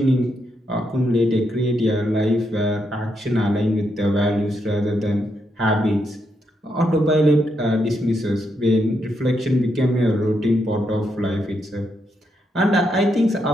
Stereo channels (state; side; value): normal; both; correlation 0.80